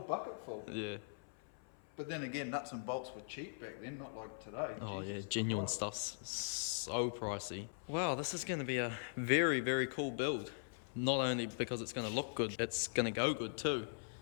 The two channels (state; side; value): silent; right; 51 dB below the other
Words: full. Yeah. But then again, nuts and bolts were cheap back then, not like today. Oh Jesus yeah, genuine Christ. stuff's so pricey. Wow, this is going to be a very, very cool build. Not only because it's going to look good, it's going to go good too.